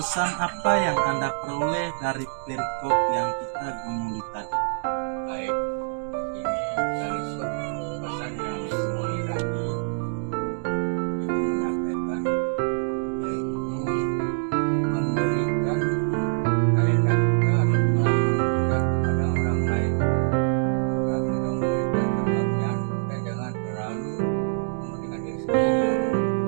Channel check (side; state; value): left; silent; digital silence